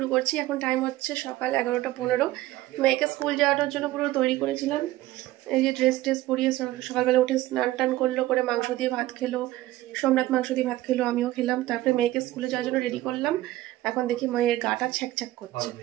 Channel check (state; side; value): quieter; left; 16.5 dB